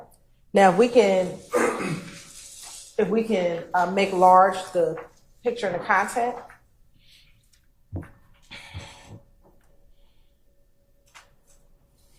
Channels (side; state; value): both; identical; correlation 1.00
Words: Now, if we can make large the picture and the content.